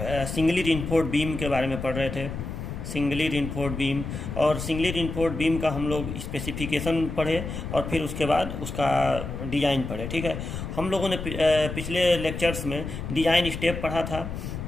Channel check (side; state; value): left; noise; rumble, 6 dB below the sound